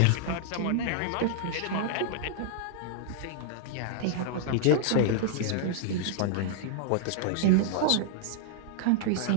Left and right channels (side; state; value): both; different; correlation -0.01